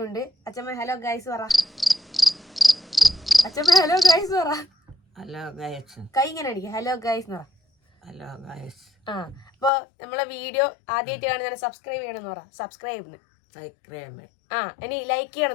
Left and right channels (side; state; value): right; drops out; at 9.7 s